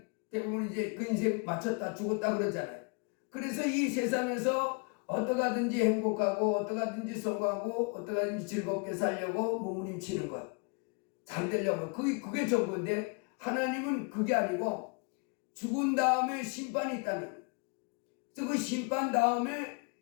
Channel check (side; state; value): right; quieter; 34.0 dB